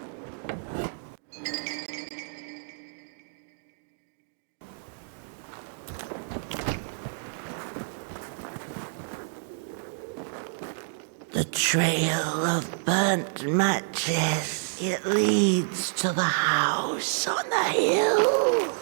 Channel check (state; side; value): silent; left; digital silence